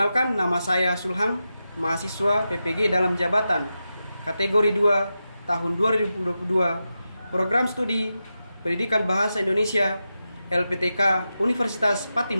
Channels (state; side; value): inverted; both; correlation -0.90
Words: nama saya Sulhang, mahasiswa PPG dalam jabatan kategori 2 tahun 2022, program studi Pendidikan Bahasa Indonesia LPTK Universitas